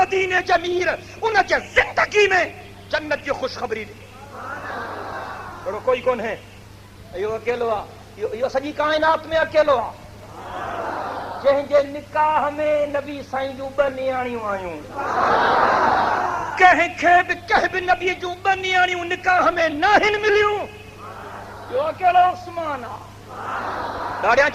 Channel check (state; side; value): identical; both; correlation 1.00